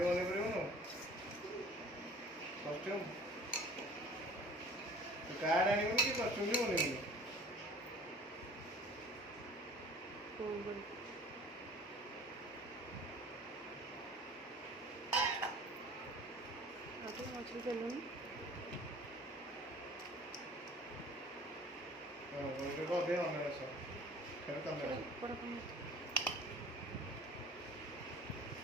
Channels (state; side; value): normal; both; correlation 0.47